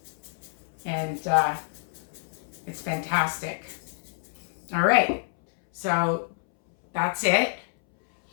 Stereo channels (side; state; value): right; silent; 60 dB below the other